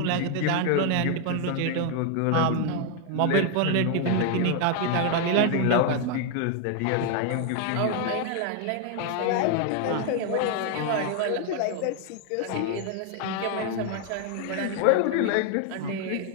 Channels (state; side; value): different; both; correlation 0.00